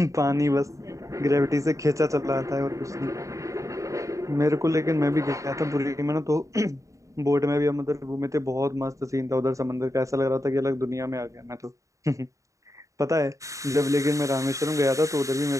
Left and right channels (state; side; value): late; left; 0.16 ms